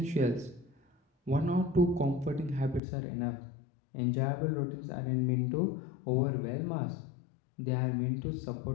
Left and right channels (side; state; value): right; drops out; at 2.8 s